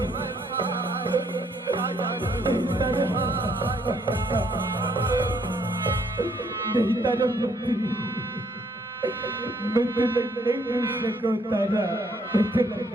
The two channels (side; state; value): both; normal; correlation 0.68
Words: नहीं तारामती मैं तुला नहीं बेच सकूं तारा, मैं तुला